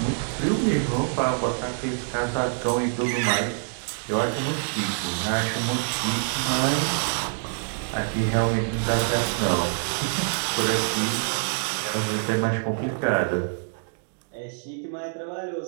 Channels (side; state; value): left; silent; digital silence